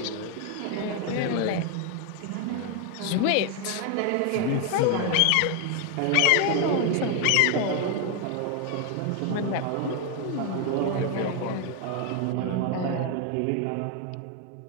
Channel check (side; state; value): both; different; correlation 0.01